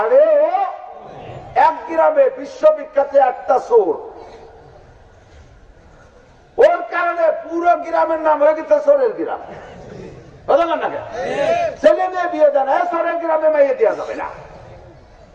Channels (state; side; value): identical; both; correlation 1.00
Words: ও। এক গ্রামে বিশ্ববিখ্যাত একটা চোর, ওর কারণে পুরো গ্রামের নাম হয়ে গেছে চোরের গ্রাম। ছেলে মেয়ে বিয়ে দেয় না, চোরের গ্রামে মাইয়ে দেওয়া যাবে না,